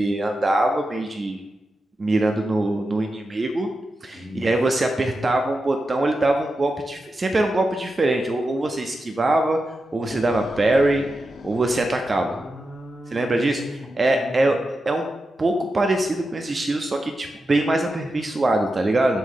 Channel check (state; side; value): normal; both; correlation 0.90